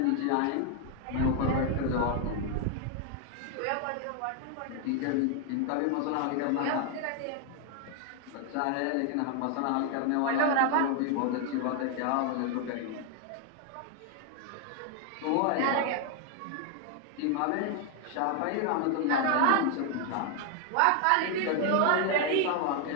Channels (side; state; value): both; different; correlation 0.01